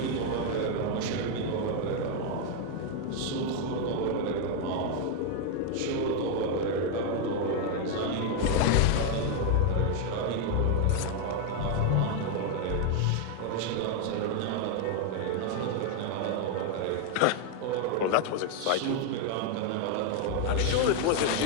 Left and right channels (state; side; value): different; both; correlation 0.01